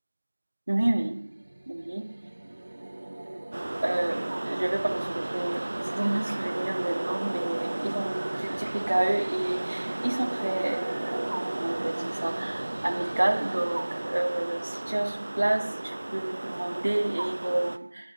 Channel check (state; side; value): inverted; both; correlation -1.00